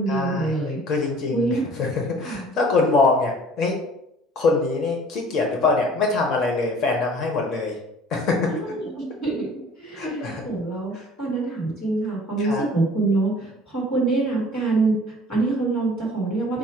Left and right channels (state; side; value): normal; both; correlation 0.49